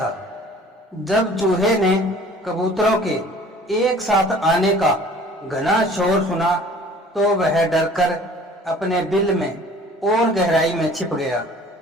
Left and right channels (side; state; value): both; normal; correlation 0.50